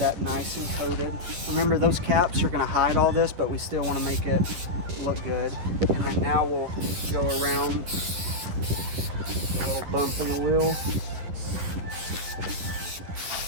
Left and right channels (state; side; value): late; left; 11 ms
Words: nice and coated. Remember, those caps are going to hide all this, but we still want to make it look good. And then now we'll go around a little bump in the wheel.